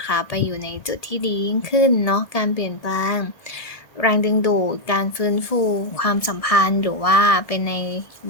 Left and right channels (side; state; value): right; late; 1.7 ms